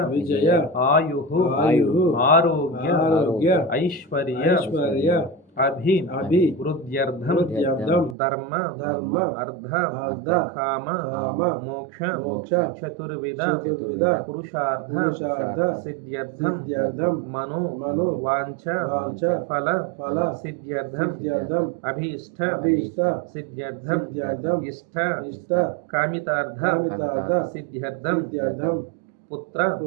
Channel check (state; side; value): drops out; left; at 8.2 s